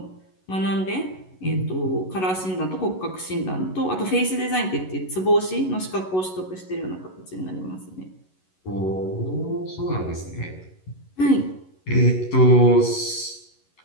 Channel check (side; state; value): right; late; 11 ms